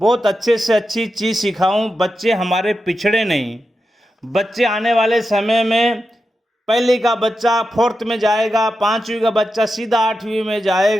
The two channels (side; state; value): both; normal; correlation 0.89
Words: अच्छे से अच्छी चीज़ सिखाऊं, बच्चे हमारे पिछड़े नहीं। बच्चे आने वाले समय में पहली का बच्चा 4th में जाएगा, 5वीं का बच्चा सीधा 8वीं में